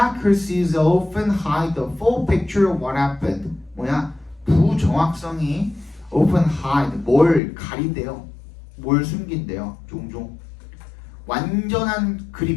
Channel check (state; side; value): drops out; right; at 7.4 s